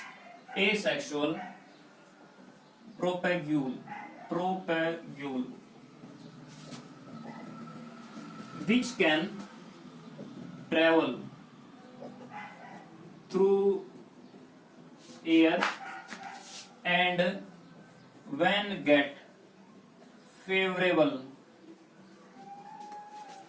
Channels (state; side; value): identical; both; correlation 1.00